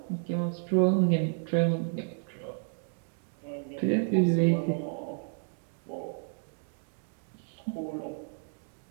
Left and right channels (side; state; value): left; silent; 57 dB below the other